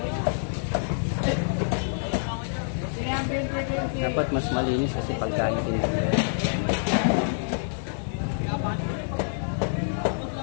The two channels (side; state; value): right; silent; 60 dB below the other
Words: Dapat mas malinis kasi pagkain nila.